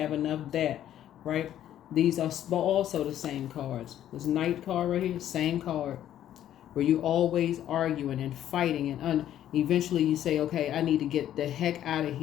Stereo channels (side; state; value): right; quieter; 11.5 dB